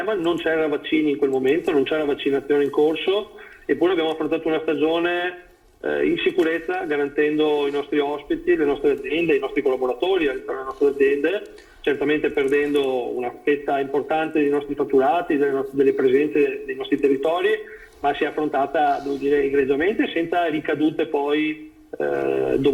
non c'era vaccini in quel momento, non c'era vaccinazione in corso, eppure abbiamo affrontato una stagione in sicurezza, garantendo i nostri ospiti, le nostre aziende, i nostri collaboratori all'interno delle nostre aziende, certamente perdendo una fetta importante dei nostri fatturati, delle presenze dei nostri territori, ma si è affrontata, devo dire, egregiamente, senza ricadute poi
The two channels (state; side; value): identical; both; correlation 1.00